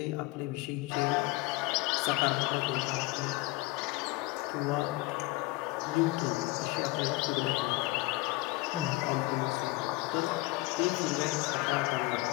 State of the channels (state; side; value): quieter; right; 21.1 dB